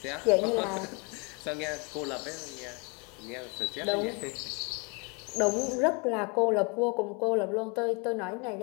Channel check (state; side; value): quieter; right; 31.9 dB